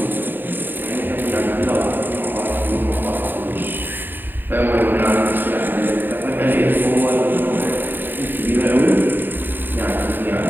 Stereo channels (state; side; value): late; left; 0.092 ms